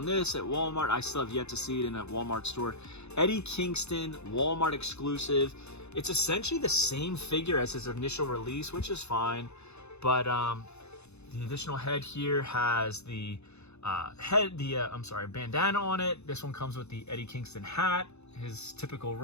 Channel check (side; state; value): right; late; 0.81 ms